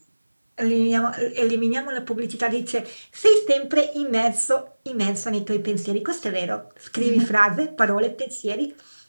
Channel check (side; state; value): both; inverted; correlation -1.00